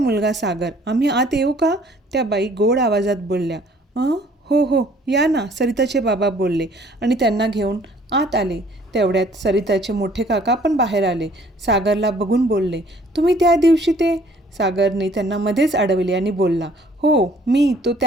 सागर. आम्ही आत येऊ का? त्या बाई गोड आवाजात बोलल्या. हो, या ना, सरिताचे बाबा बोलले आणि त्यांना घेऊन आत आले. तेवढ्यात सरिताचे मोठे काका पण बाहेर आले. सागरला बघून बोलले, तुम्ही त्या दिवशी ते? सागरने त्यांना मध्येच अडवले आणि बोलला, हो, तो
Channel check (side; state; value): both; normal; correlation 0.57